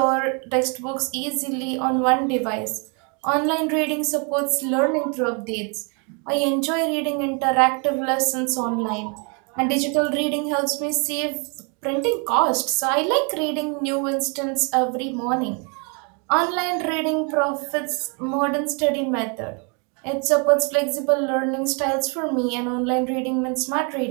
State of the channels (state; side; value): quieter; left; 35.7 dB